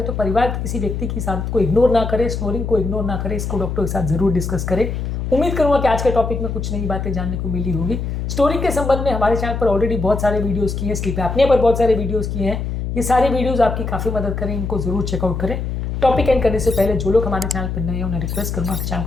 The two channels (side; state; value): left; noise; hum, 3 dB below the sound